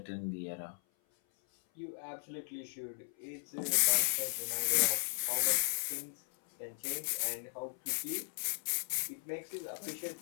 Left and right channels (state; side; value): silent; right; 54 dB below the other